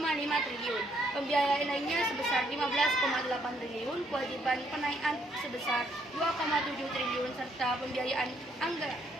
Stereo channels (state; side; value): normal; both; correlation 0.70